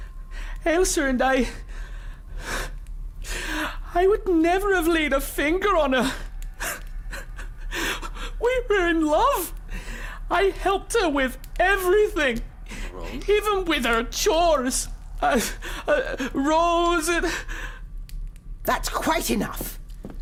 Elsa and I would never have laid a finger on her. We were in love. I helped her with everything. Rose? Even with her chores. Rose and... That's quite enough.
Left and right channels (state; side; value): identical; both; correlation 1.00